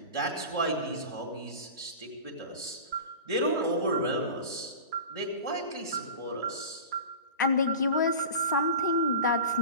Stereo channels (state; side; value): inverted; both; correlation -0.34